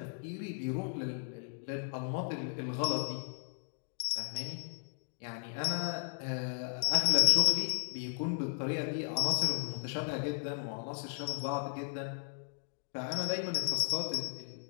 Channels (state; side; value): silent; right; digital silence